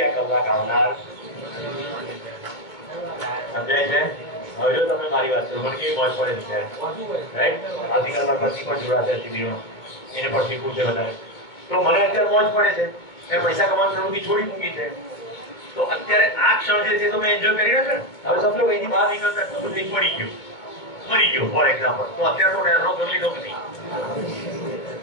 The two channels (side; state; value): right; late; 2.2 ms